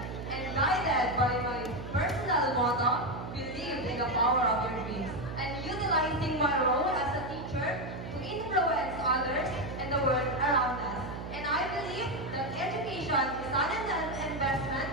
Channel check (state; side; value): noise; right; hum, 9 dB below the sound